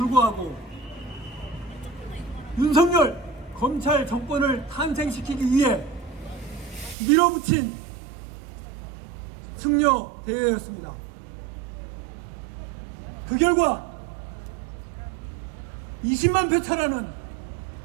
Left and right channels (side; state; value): left; drops out; at 7.0 s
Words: 윤석열 검찰 정권을 탄생시키기 위해 밀어붙인 승려 대회였습니다. 그 결과 20만 표 차라는